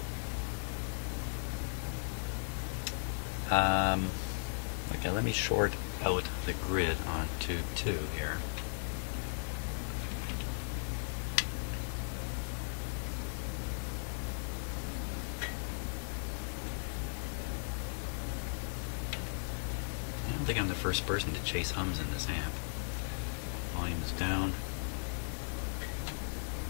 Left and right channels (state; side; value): silent; right; digital silence